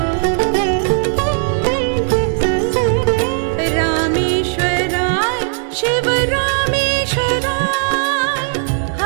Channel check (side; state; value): left; silent; digital silence